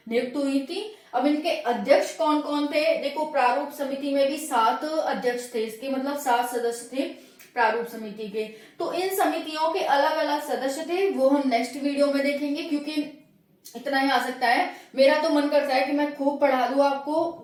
नियुक्त हुई थी। अब इनके अध्यक्ष कौन कौन थे? देखो, प्रारूप समिति में भी 7 अध्यक्ष थे, इसके मतलब 7 सदस्य थे प्रारूप समिति के। तो इन समितियों के अलग अलग सदस्य थे, वो हम नेक्स्ट वीडियो में देखेंगे, क्योंकि इतना ही आ सकता है। मेरा तो मन करता है कि मैं खूब पढ़ा दूं आपको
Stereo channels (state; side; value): identical; both; correlation 1.00